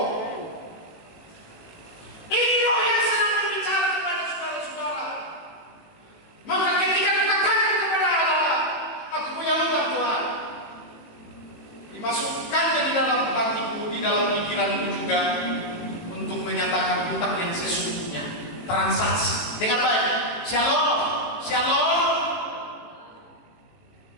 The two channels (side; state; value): right; late; 18 ms